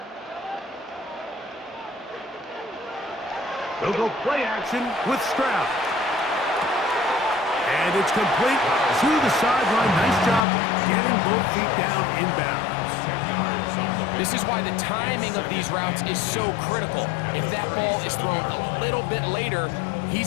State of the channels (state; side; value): drops out; right; at 10.4 s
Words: They'll go play action with Stroud. And it's complete to the sideline. Nice job getting both feet down inbounds. This is why the timing of these routes is so critical. If that ball is thrown a little bit later,